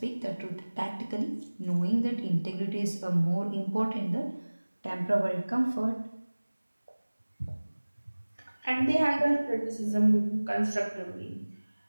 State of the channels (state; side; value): inverted; both; correlation -1.00